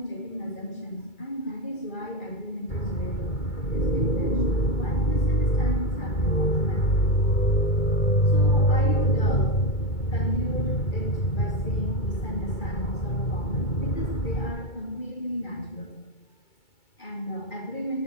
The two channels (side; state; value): right; late; 2.3 ms